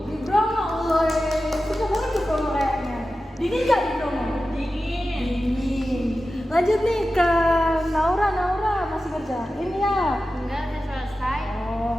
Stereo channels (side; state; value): both; normal; correlation 0.93